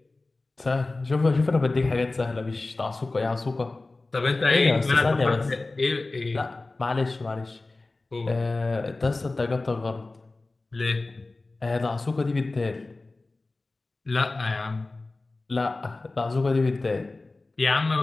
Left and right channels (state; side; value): quieter; right; 3.3 dB